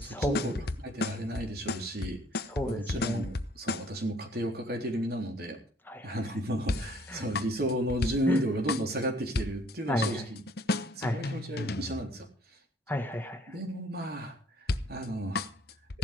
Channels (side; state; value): both; normal; correlation 0.61